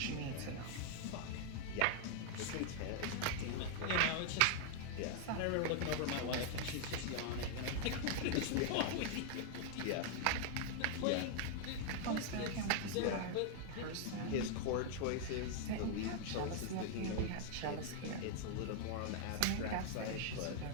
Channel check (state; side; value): different; both; correlation 0.00